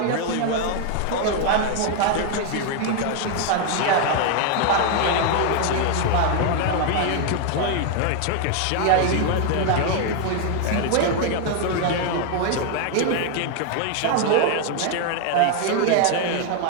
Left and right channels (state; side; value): different; both; correlation 0.00